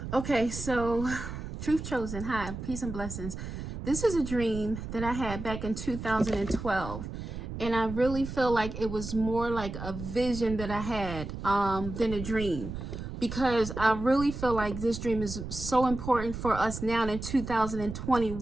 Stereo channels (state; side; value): noise; right; rumble, 8 dB below the sound